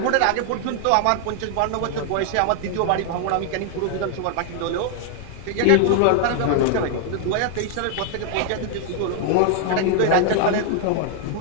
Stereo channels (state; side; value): different; both; correlation 0.00